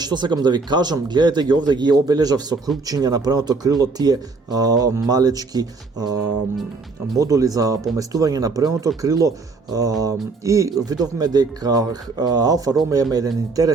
што сакам да ви кажам, гледате ги овде, ги обележав со крупчиња на предното крило тие малечки модули за поместување на предното крило и видовме дека Алфа Ромео има еден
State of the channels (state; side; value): quieter; left; 4.1 dB